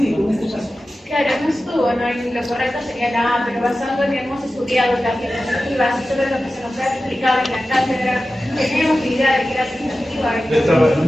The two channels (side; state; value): both; normal; correlation 0.94